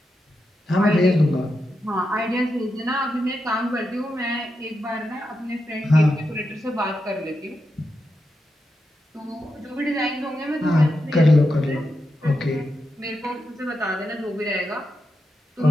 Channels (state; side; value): normal; both; correlation 0.87